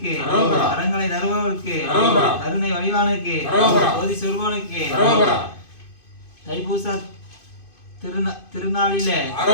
வரங்களை தருபவருக்கு கருணை வடிவானுக்கு ஜோதி சொருபவனுக்கு தைப்பூச திருநாளிலே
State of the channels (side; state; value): right; late; 2.5 ms